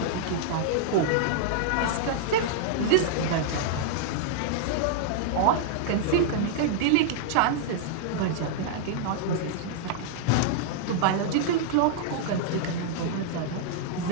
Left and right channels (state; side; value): different; both; correlation -0.01